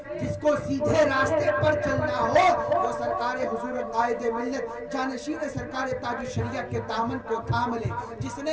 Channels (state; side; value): identical; both; correlation 1.00